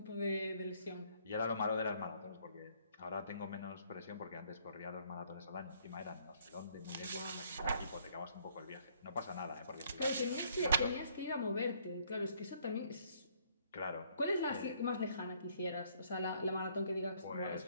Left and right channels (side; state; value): both; inverted; correlation -0.64